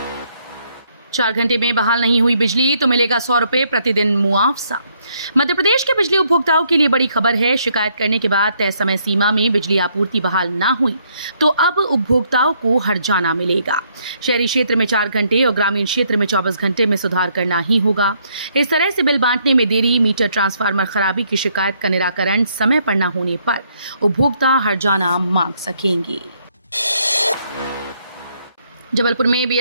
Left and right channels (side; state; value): both; inverted; correlation -0.71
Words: 4 घंटे में बहाल नहीं हुई बिजली तो मिलेगा 100 रुपए प्रतिदिन मुआवजा। मध्य प्रदेश के बिजली उपभोक्ताओं के लिए बड़ी खबर है। शिकायत करने के बाद तय समय सीमा में बिजली आपूर्ति बहाल ना हुई तो अब उपभोक्ताओं को हर्जाना मिलेगा। शहरी क्षेत्र में 4 घंटे और ग्रामीण क्षेत्र में 24 घंटे में सुधार करना ही होगा। इस तरह से बिल बांटने में देरी, मीटर ट्रांसफार्मर खराबी की शिकायत का निराकरण समय पर न होने पर उपभोक्ता हर्जाना मांग सकेंगे। जबलपुर में